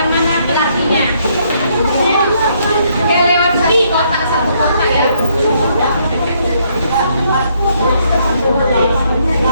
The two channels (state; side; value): inverted; both; correlation -0.71